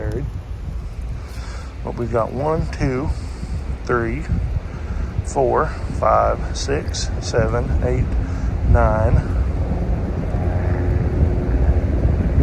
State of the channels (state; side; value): identical; both; correlation 1.00